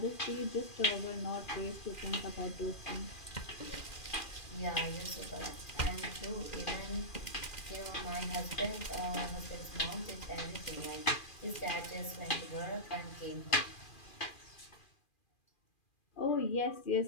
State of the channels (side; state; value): right; late; 2.4 ms